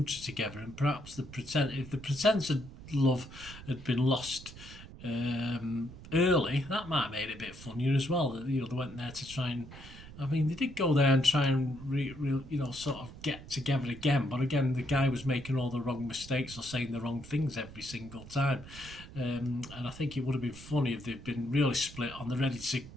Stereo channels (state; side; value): noise; right; rumble, 16 dB below the sound